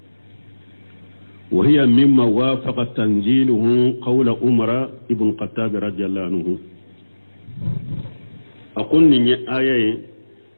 وهي مما وافق تنزيله قول عمر ابن الخطاب رضي الله عنه أقول ني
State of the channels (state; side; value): inverted; both; correlation -1.00